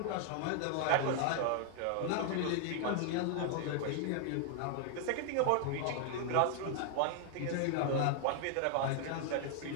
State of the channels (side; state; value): both; different; correlation 0.00